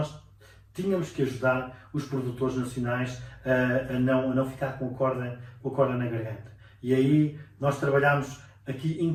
tínhamos que ajudar os produtores nacionais a não ficar com a corda na garganta. E aí nós trabalhámos aqui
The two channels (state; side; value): identical; both; correlation 1.00